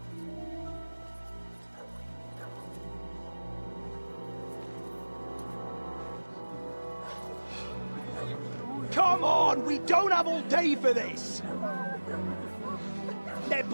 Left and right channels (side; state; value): both; inverted; correlation -1.00